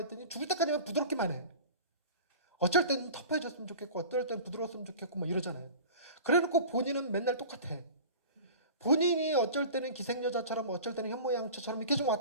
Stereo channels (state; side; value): inverted; both; correlation -0.39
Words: 죽을 때까지만 부드럽기만 해. 어쩔 때는 터프해졌으면 좋겠고 어떨 때는 부드러웠으면 좋겠고 뭐 이러잖아요. 그래놓고 본인은 맨날 똑같아. 본인이 어쩔 때는 기생여자처럼 어쩔 때는 현모양처처럼 이렇게 좀